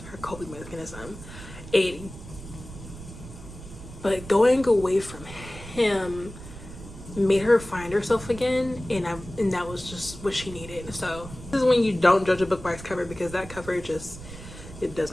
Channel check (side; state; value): right; noise; rumble, 14 dB below the sound